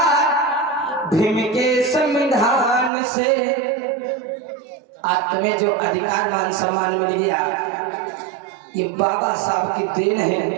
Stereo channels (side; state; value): left; drops out; at 2.9 s